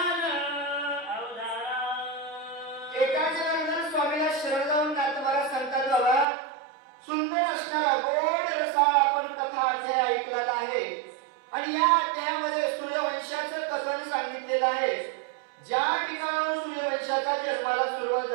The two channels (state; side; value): drops out; left; at 6.2 s